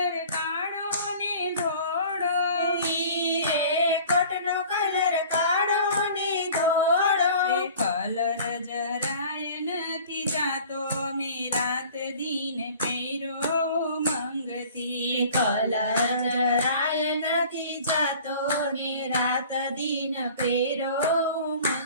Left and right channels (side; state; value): both; inverted; correlation -0.46